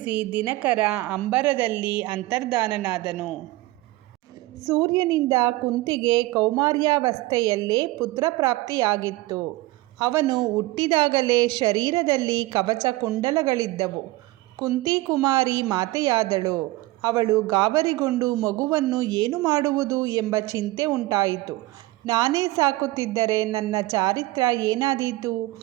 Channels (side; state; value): left; quieter; 19.0 dB